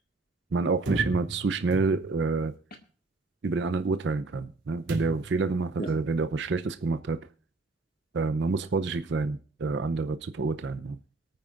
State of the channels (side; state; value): left; quieter; 3.4 dB